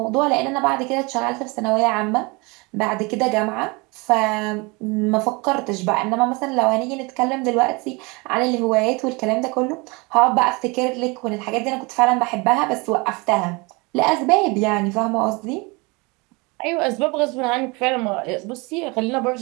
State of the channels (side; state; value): left; quieter; 27.2 dB